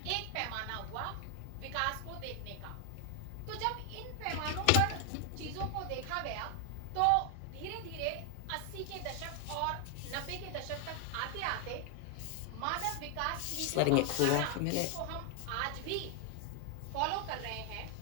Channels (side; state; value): both; different; correlation 0.00